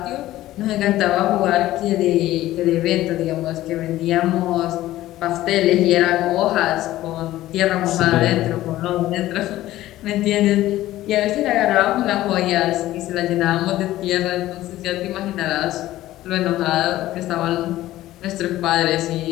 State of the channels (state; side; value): quieter; right; 15.2 dB